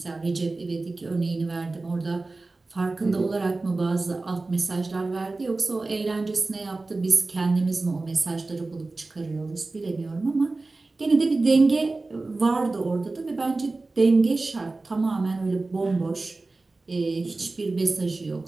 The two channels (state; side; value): quieter; left; 3.4 dB